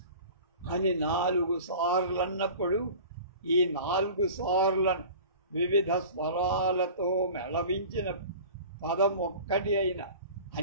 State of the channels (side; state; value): both; inverted; correlation -0.40